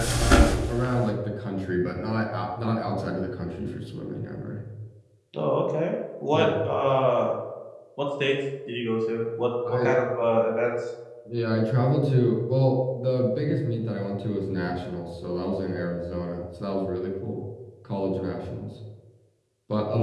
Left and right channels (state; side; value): identical; both; correlation 1.00